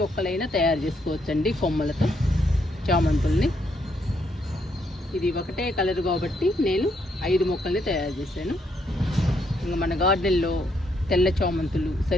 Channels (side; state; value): both; normal; correlation 0.75